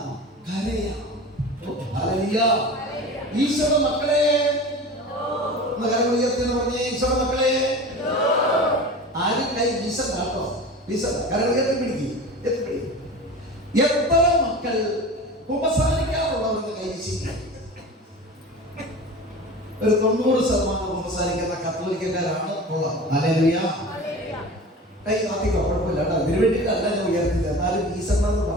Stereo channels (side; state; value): both; normal; correlation 0.34